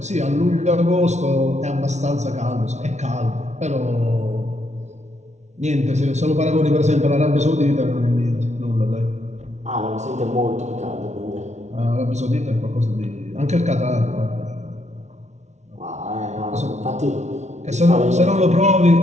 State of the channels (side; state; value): left; late; 0.33 ms